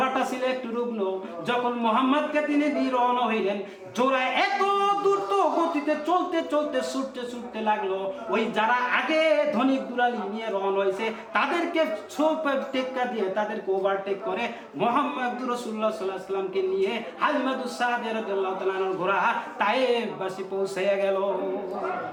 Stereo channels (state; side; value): identical; both; correlation 1.00